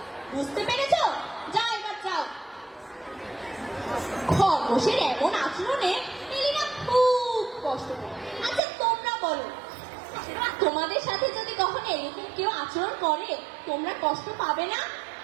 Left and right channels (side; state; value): left; drops out; at 8.6 s